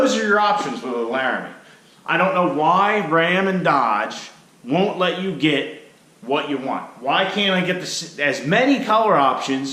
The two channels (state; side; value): identical; both; correlation 1.00